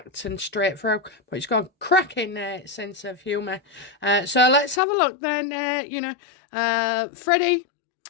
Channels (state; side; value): drops out; right; at 4.8 s